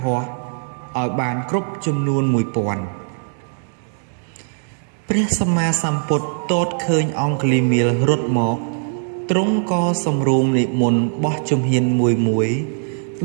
ហស្ថឲ្យបានគ្រប់ចំនួន 1000ព្រះសម្មាសម្ពុទ្ធទតឃើញអង្គលីមៀលរត់មកទ្រង់ក៏សម្រួមនិមន្តបោះជំហានមួយ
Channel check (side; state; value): left; silent; digital silence